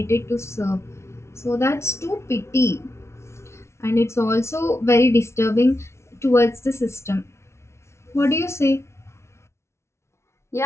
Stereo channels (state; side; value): late; right; 0.13 ms